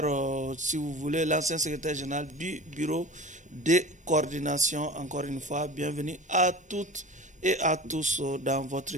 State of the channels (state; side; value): normal; both; correlation 0.36